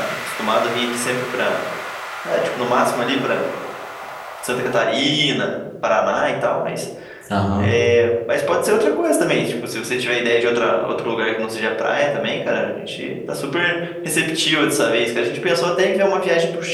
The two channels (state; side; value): identical; both; correlation 1.00